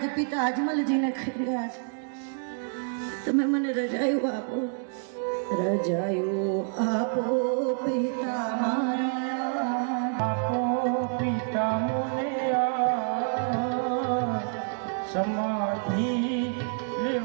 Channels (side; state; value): left; silent; 60 dB below the other